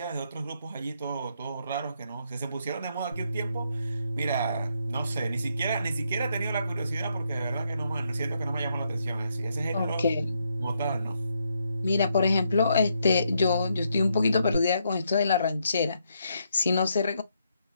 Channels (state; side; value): inverted; both; correlation -0.78